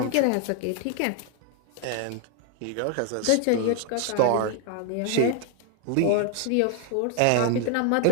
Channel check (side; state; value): both; different; correlation 0.01